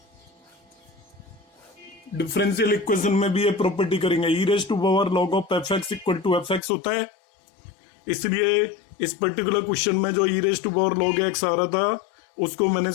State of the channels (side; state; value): right; drops out; at 6.6 s